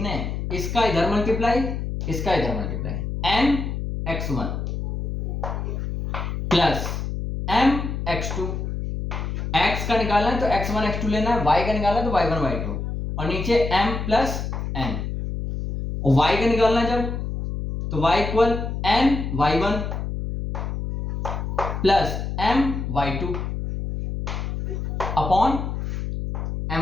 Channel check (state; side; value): noise; left; hum, 4 dB below the sound